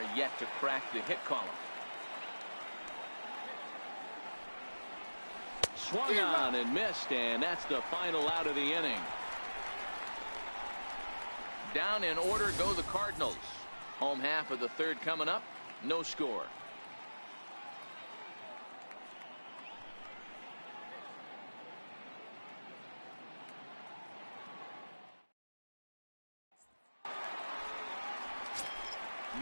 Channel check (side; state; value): both; inverted; correlation -1.00